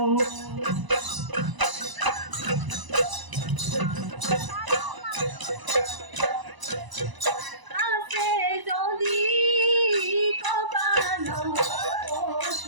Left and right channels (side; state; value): left; late; 1.0 ms